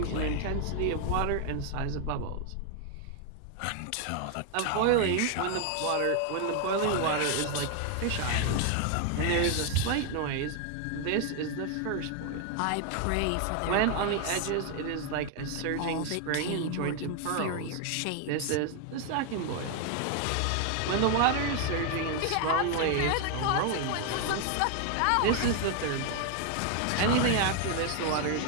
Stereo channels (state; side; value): different; both; correlation 0.01